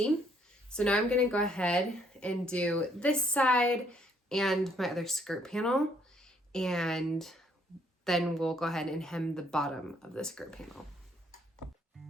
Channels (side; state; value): both; normal; correlation 0.67